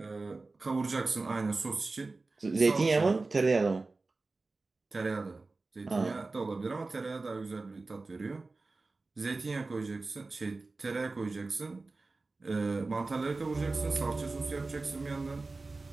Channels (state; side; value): quieter; left; 3.6 dB